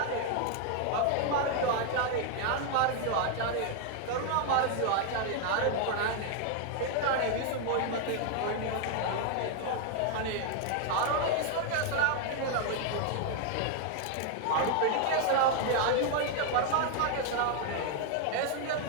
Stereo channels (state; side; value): different; both; correlation 0.00